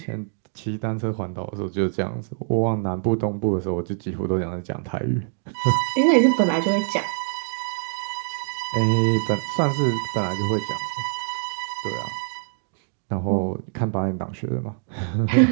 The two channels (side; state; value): left; silent; 61 dB below the other